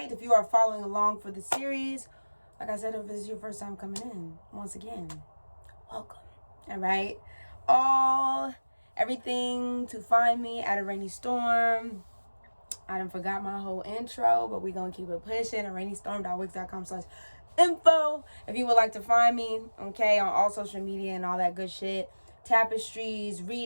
If you are following along for the series, like I said, if this is your first time coming in, once again, welcome. Alright? Everything to find me at Araneae Storm. I done forgot my whole intro, but we gonna keep it pushing. araneaestorm.wix.com/info. If you would like to find me, okay, on all social media and all that good shit. Tapestries,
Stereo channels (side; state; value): both; inverted; correlation -1.00